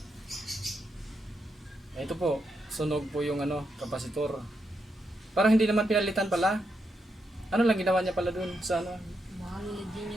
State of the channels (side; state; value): both; normal; correlation 0.82